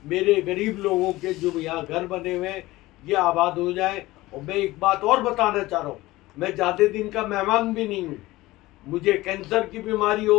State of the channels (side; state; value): right; quieter; 18.6 dB